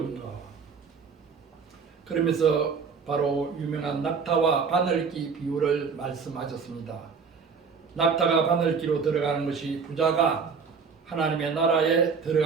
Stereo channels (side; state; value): left; quieter; 5.6 dB